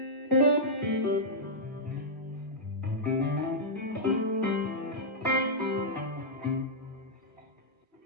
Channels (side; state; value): both; normal; correlation -0.09